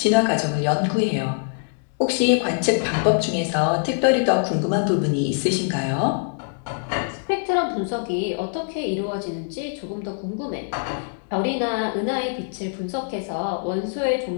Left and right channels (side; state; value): right; silent; digital silence